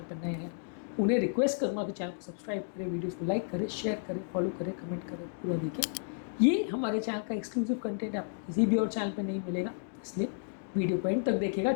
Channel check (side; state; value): right; silent; digital silence